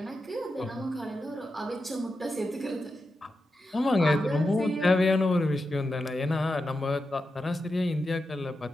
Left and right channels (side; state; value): both; normal; correlation 0.89